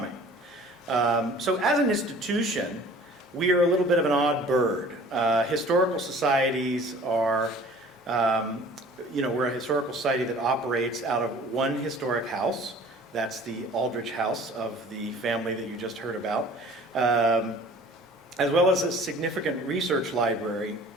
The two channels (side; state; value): both; normal; correlation 0.48